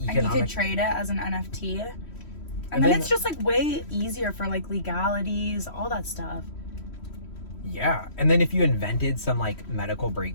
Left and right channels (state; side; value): late; right; 3.1 ms